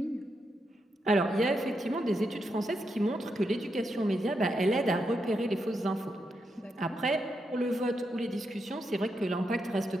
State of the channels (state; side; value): normal; both; correlation 0.83